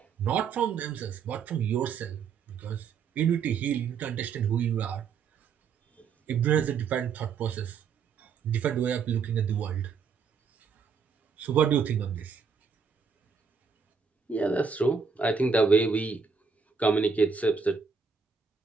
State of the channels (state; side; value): quieter; left; 5.8 dB